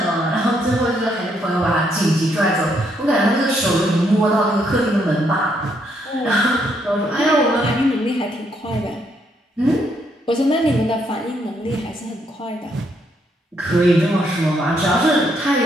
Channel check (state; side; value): normal; both; correlation 0.74